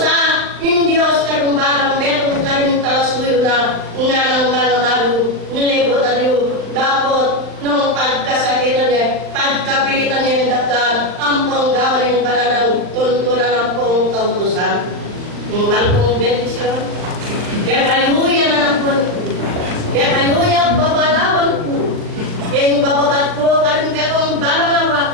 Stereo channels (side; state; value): left; late; 39 ms